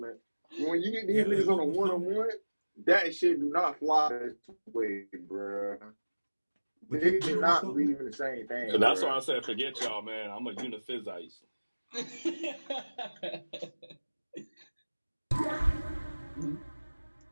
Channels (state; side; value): inverted; both; correlation -1.00